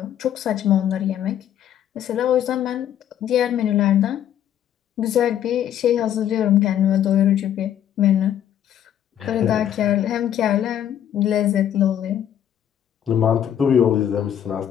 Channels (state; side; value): quieter; right; 10.4 dB